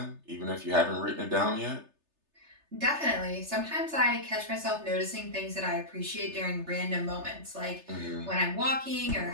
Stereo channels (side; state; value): left; late; 3.3 ms